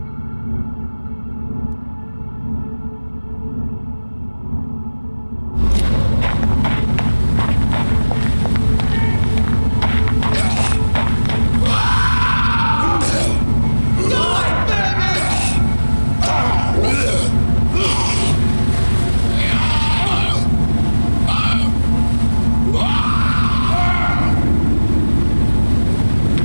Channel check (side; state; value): both; inverted; correlation -1.00